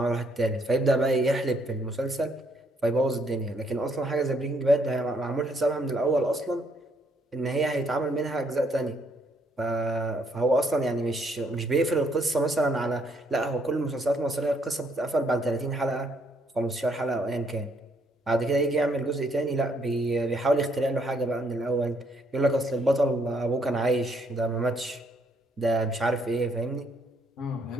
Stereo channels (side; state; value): both; normal; correlation 0.69